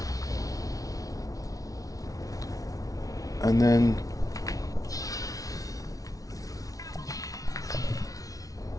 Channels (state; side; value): late; right; 0.17 ms